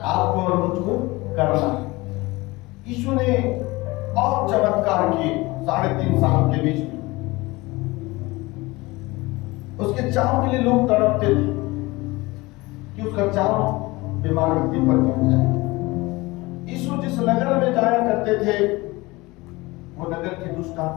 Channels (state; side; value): quieter; right; 22.0 dB